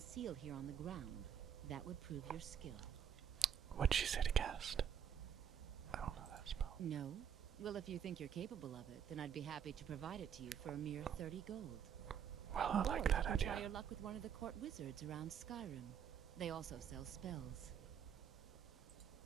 seal here on the ground, that would prove your skill. What'd she say to cast? I don't know that spell. No? Well, if you think you're capable of it, then I'd be happy to provide it to you for a mere 30 gold. Well, I Or like you that can idea. try your luck with one of the court wizards around Skyrim. They also sell spells.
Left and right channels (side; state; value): left; quieter; 8.4 dB